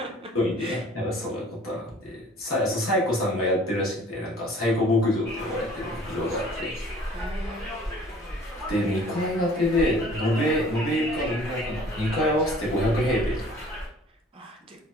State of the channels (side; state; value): both; normal; correlation 0.51